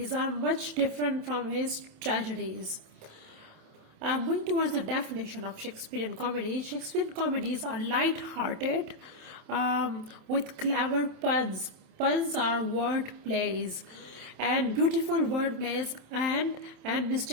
are much different from his tragedies. Moving towards the definition of Shakespearean comedy, Shakespearean comedies are light-hearted with clever puns. Puns are word plays and beautiful word plays and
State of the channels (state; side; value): late; left; 27 ms